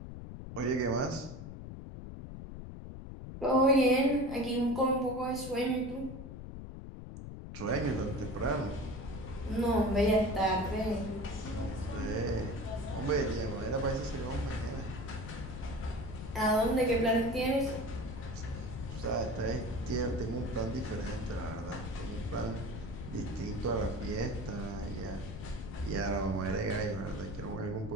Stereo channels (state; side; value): noise; left; rumble, 9 dB below the sound